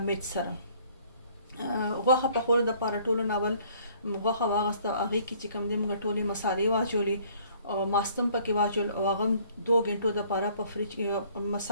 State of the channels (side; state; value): both; inverted; correlation -0.58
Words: सरा गोखा पकोड़ द पारा टोलो नावल गोखा वागस्ता आगे की चिकम दे मूंगा टोले मसाले वाचोली और मास्तम पके वाचोल वागम 2 घंटों द पारा पर फ्रिज